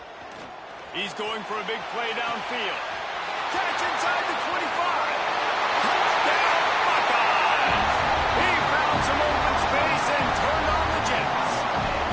He's going for a big play downfield. Catch inside the 25. Some open space and turned on the Jets.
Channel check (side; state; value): both; identical; correlation 1.00